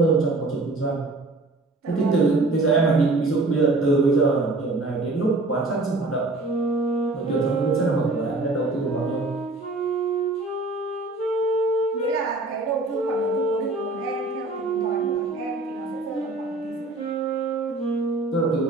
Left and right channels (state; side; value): quieter; left; 3.1 dB